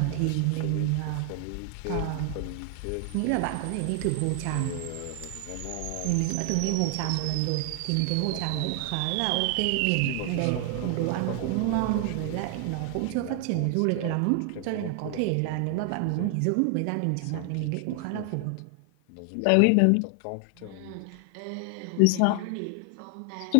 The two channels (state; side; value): different; both; correlation 0.00